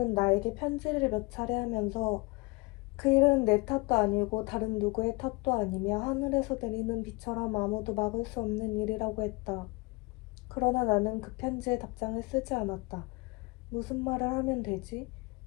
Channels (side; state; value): right; quieter; 26.5 dB